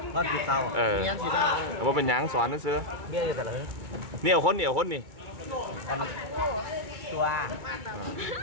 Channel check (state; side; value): late; left; 2.3 ms